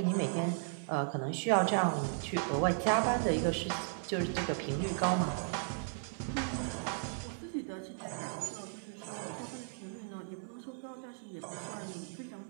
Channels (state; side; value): silent; left; 54 dB below the other